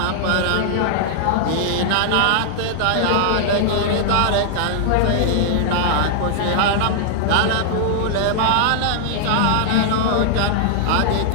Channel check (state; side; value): different; both; correlation -0.01